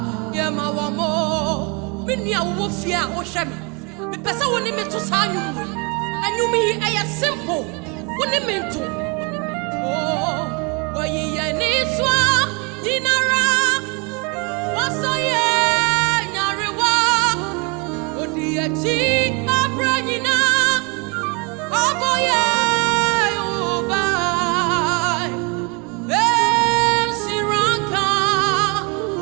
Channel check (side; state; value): left; quieter; 31.3 dB